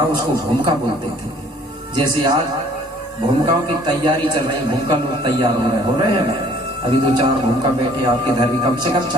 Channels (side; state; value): both; normal; correlation 0.56